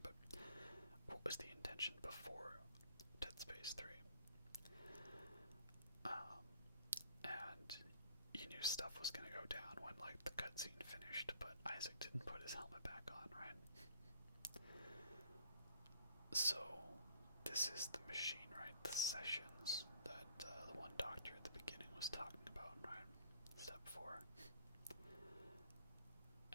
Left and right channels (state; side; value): inverted; both; correlation -0.56